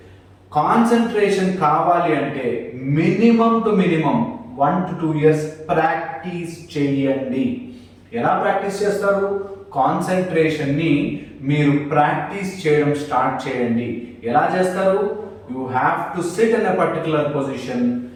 కాన్సన్ట్రేషన్ కావాలి అంటే minimum to minimum 1 to 2 years practice చేయండి. ఎలా ప్రాక్టీస్ చేస్తారు? కాన్సన్ట్రేషన్ని మీరు ప్రాక్టీస్ చేయడం స్టార్ట్ చేయండి. ఎలా చేస్తారు? You have to SIT in a particular position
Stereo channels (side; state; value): both; identical; correlation 1.00